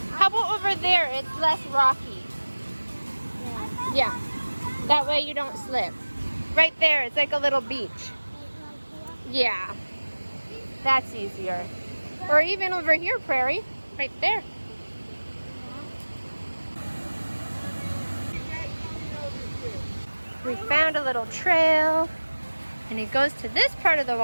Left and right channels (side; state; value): both; inverted; correlation -1.00